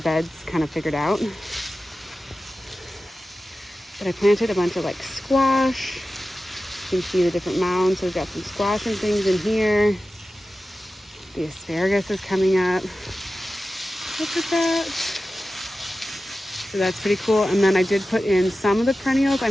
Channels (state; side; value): normal; both; correlation 0.94